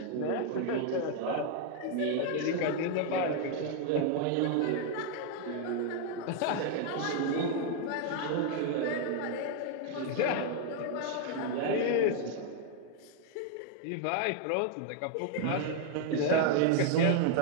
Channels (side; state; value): both; different; correlation 0.00